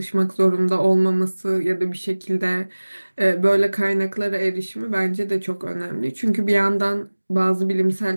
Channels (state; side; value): inverted; both; correlation -1.00